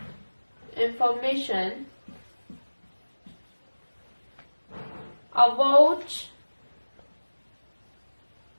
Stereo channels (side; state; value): both; inverted; correlation -1.00